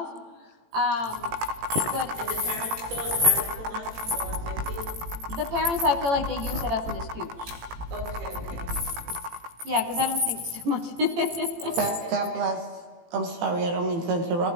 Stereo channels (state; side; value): late; left; 18 ms